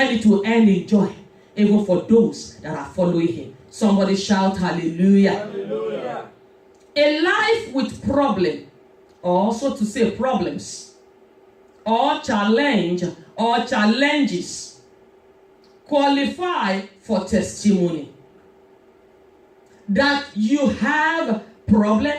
it will end in joy even for those that are following him. Somebody shout hallelujah. Hallelujah. A life with problem, or so to say problems, or challenge, or challenges, qualify for testimony. That you have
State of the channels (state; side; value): identical; both; correlation 1.00